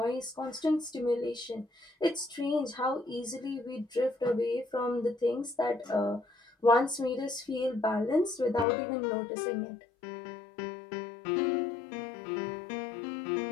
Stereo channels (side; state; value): right; drops out; at 8.7 s